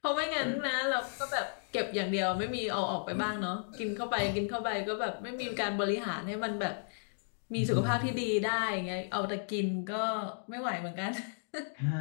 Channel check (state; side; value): silent; right; digital silence